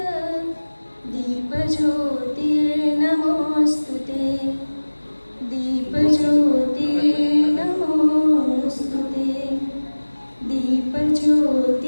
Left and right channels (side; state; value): both; inverted; correlation -1.00